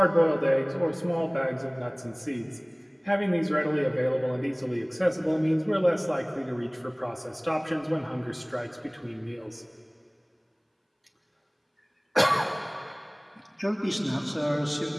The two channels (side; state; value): both; identical; correlation 1.00